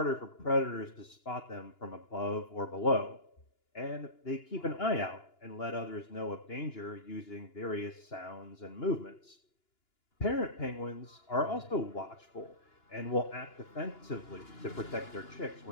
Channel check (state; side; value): late; right; 2.9 ms